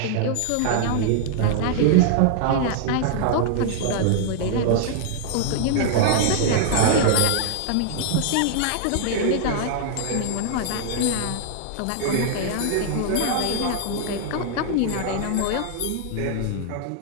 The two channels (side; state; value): both; different; correlation -0.01